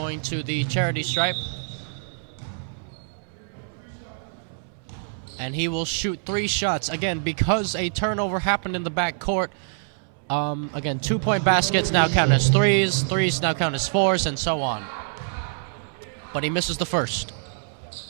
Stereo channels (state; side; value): silent; left; digital silence